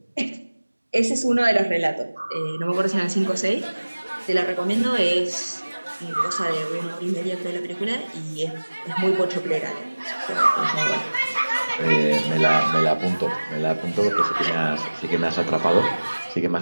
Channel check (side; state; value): both; inverted; correlation -1.00